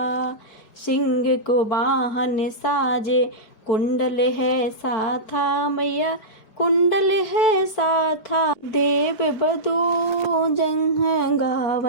सिंह को वाहन साजे, कुंडल है साथा मैया, कुंडल है साथा। देव बधू जंघ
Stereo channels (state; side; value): late; right; 4.7 ms